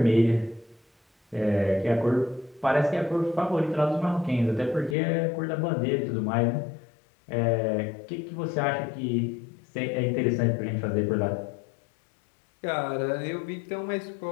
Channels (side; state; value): right; drops out; at 5.0 s